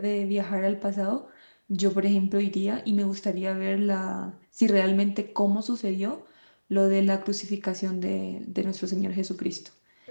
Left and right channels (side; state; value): both; inverted; correlation -1.00